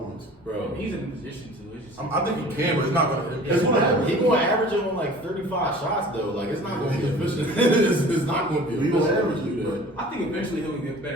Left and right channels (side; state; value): both; normal; correlation 0.45